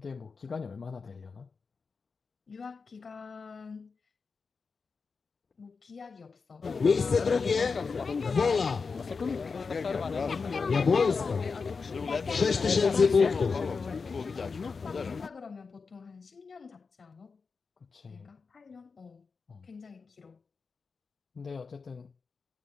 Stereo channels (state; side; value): quieter; right; 4.9 dB